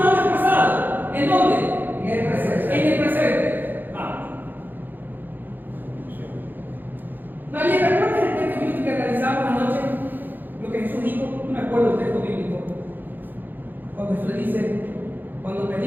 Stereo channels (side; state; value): left; late; 0.089 ms